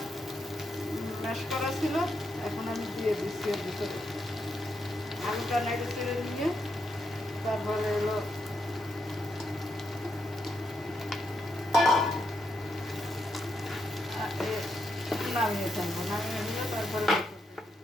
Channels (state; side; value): normal; both; correlation 0.81